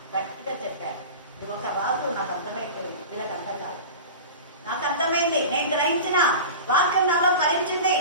గట్టిగా చెప్పారు, నువ్వు ఒక రాజు, నాకు అర్థమైపోయింది, వీళ్ళకి అర్థం కాదు, నాకు అర్థమైంది, నేను గ్రహించిన వాక్యం నాలో ఫలించింది.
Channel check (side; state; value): both; inverted; correlation -0.32